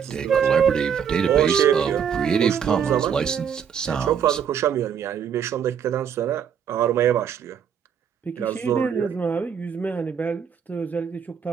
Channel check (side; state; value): left; quieter; 7.8 dB